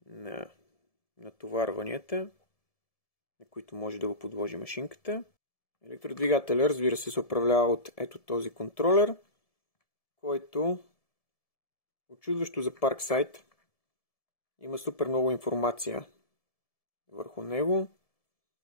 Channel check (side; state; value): right; late; 1.7 ms